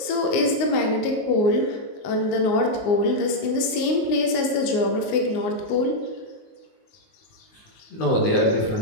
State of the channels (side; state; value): right; late; 19 ms